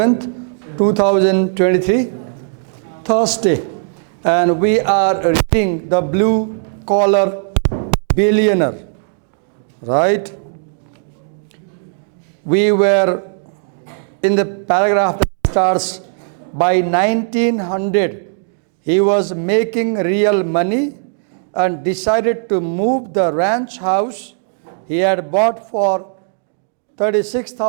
2023, Thursday. And we are reading the Blue Collar Billionaire, right? We were in the paragraph that starts, by 1900, he was making real money and decided to move the ranch house he had bought for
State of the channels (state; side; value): silent; left; digital silence